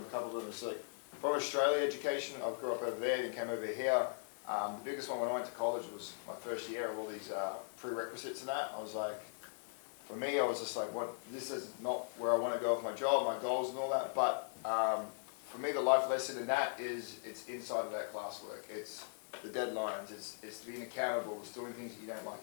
a couple of them. It's like, for Australia education, I grew up over there and came over here. The biggest one when I went to college was my first year of all these prerequisites and that. I was like, for me, I was just like, what? This is not where I want to go with my job, my goals and all that. But for me, the life lesson in that is it's inside of that classwork. It's the deadlines. It's being accountable. It's doing things you don't like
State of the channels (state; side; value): silent; right; digital silence